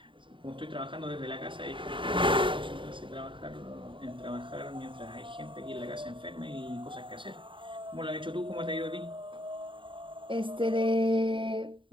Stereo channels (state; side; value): late; left; 0.24 ms